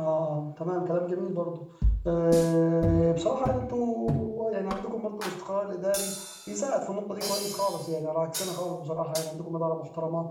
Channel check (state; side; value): identical; both; correlation 1.00